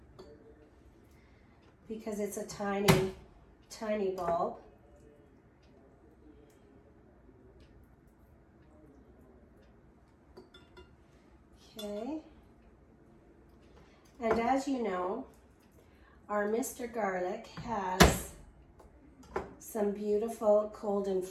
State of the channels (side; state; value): both; identical; correlation 1.00